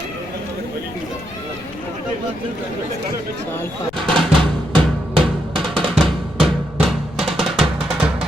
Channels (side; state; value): left; noise; rumble, 19 dB below the sound